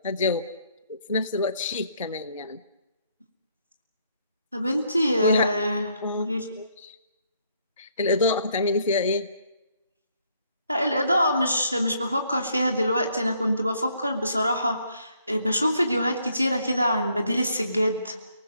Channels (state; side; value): inverted; both; correlation -0.69